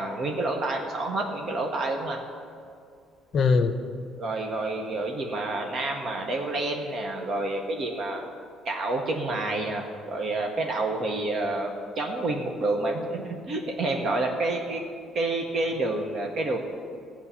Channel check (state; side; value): normal; both; correlation 0.67